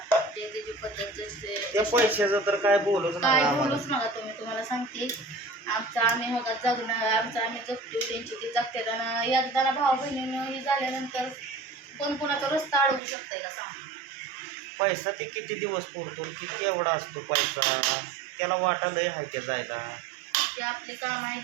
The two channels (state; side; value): drops out; left; at 13.0 s